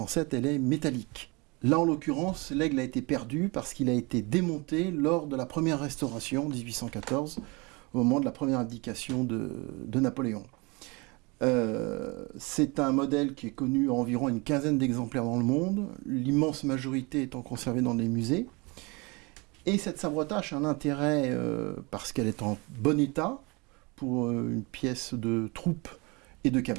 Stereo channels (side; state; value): left; quieter; 27.3 dB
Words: elle est métallique. Là, en l'occurrence, l'aigle a été perdu parce qu'il a été démonté lors de la première restauration, 1814, au moment de la première abdication de Napoléon. C'est un modèle qui est connu à environ une quinzaine d'exemplaires dans le monde, l'immense majorité étant conservée dans des musées. Et cette sabre-tâche a un intérêt parce qu'elle est en bon état pour une pièce de troupe et de